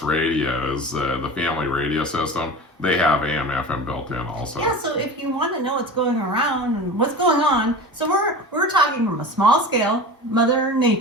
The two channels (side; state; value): both; normal; correlation 0.32